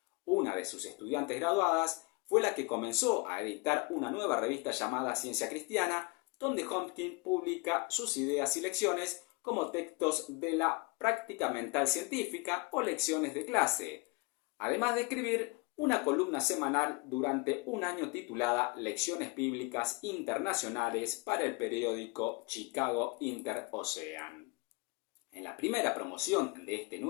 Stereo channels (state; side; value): quieter; right; 26.6 dB